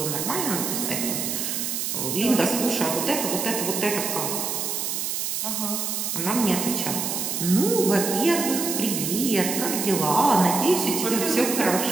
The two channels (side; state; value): right; noise; hiss, 2 dB below the sound